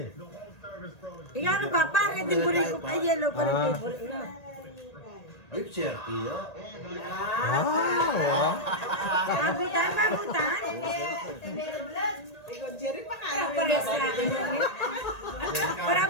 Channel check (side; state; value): right; late; 1.8 ms